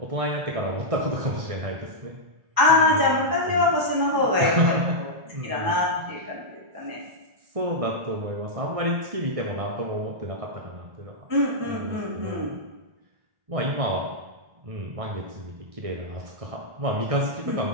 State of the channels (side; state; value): left; late; 1.6 ms